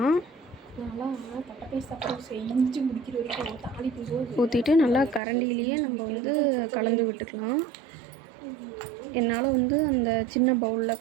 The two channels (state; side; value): drops out; left; at 5.2 s